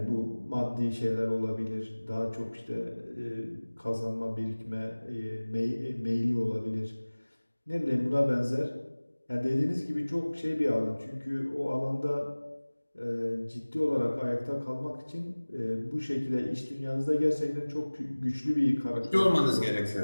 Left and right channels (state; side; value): inverted; both; correlation -1.00